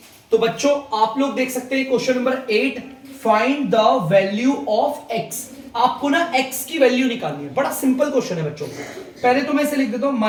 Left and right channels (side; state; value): both; identical; correlation 1.00